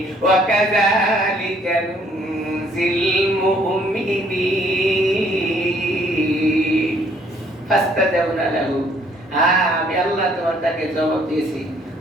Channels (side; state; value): both; normal; correlation 0.63